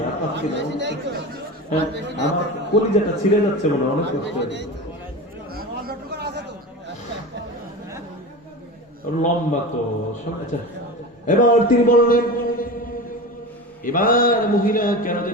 আমার কলিজাটা ছিঁড়ে যাচ্ছে মনে অনেক কষ্ট, লম্বা তো। এবার তিনি বললেন, এবার মহিলা কেন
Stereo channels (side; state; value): both; normal; correlation 0.28